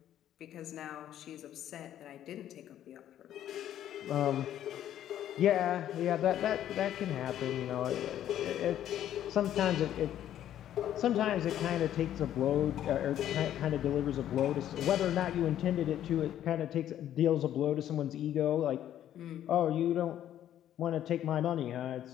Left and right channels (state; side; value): quieter; right; 11.3 dB